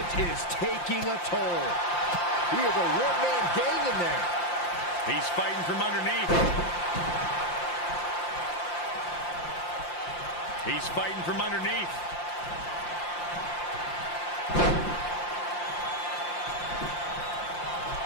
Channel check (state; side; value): late; right; 5.7 ms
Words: is taking a toll. He is a one-man gang in there. He's fighting from underneath. He's fighting from underneath.